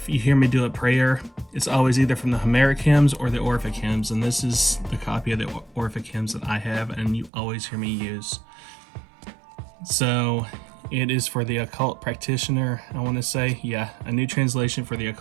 you hear me do a prayer, it's always either from the Homeric Hymns or the Orphic Hymns, and this is the copy of the Orphic Hymns that I have and you always hear me use. So it is for the occult practitioner, I want to say. Yeah, a new translation for the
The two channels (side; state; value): left; drops out; at 7.3 s